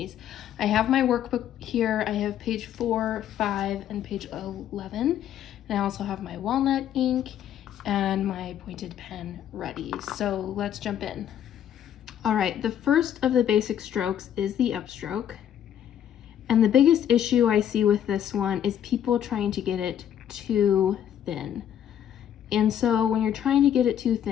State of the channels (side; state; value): right; quieter; 10.0 dB